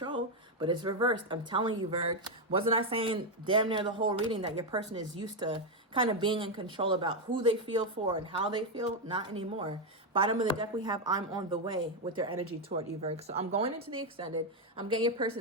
but it's reversed. I'm telling you, Virg. Wasn't I saying damn near the whole reading that your person is used to kind of being in control about who they feel for and how they feel? Not anymore. Bottom of the deck, we have I'm on the way with their energy toward you, Virg. So I'm going into the extended. I'm getting your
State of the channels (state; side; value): normal; both; correlation 0.05